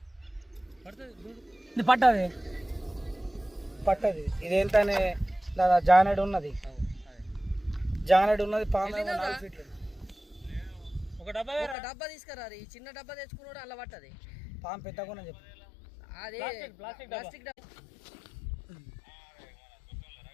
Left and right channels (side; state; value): right; drops out; at 11.8 s